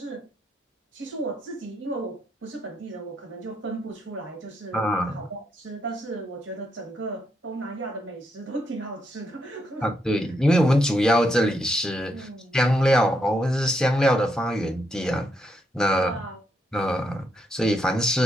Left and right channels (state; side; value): normal; both; correlation 0.79